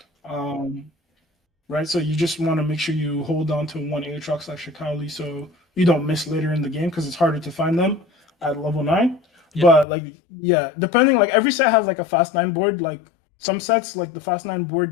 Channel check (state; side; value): drops out; right; at 9.9 s